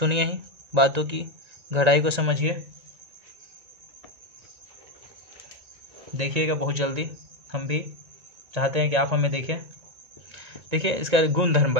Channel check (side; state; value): left; late; 1.9 ms